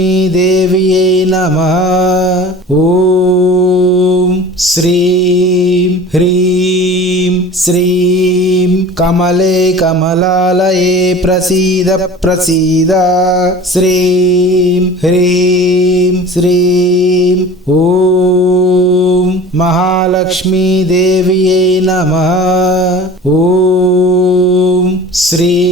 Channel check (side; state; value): both; normal; correlation 0.40